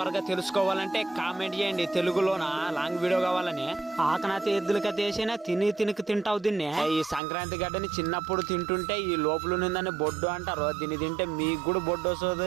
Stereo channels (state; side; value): drops out; left; at 7.2 s